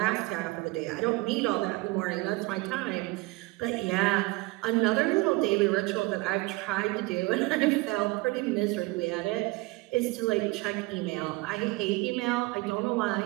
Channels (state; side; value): quieter; left; 22.7 dB